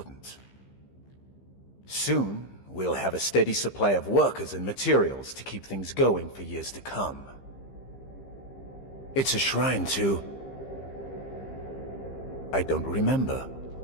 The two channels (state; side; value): late; right; 15 ms